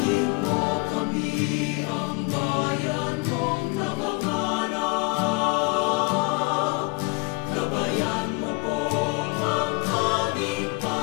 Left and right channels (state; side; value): quieter; right; 28.5 dB